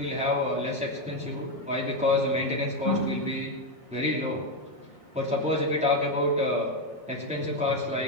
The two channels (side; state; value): both; normal; correlation 0.07